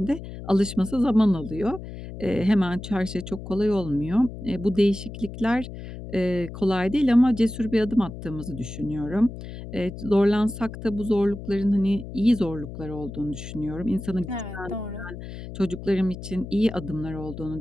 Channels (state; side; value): noise; left; hum, 11 dB below the sound